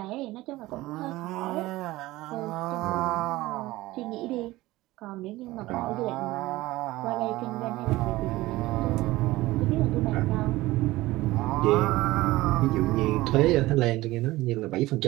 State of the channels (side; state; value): left; quieter; 18.3 dB